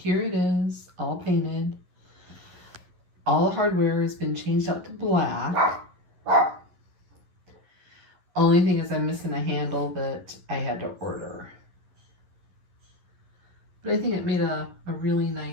it is, all painted. All the hardware has been changed out to black. Only thing is I'm missing a handle that I had to order. But I think it made a really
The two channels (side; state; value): left; late; 11 ms